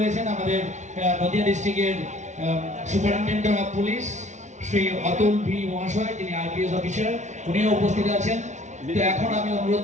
আমাদের নদিয়া ডিস্ট্রিক্টের superintendent of police Shri Atul V মহাশয়, যিনি আইপিএস অফিসার, উনিও উপস্থিত আছেন। তো এখন আমি অনুরোধ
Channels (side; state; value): left; late; 0.34 ms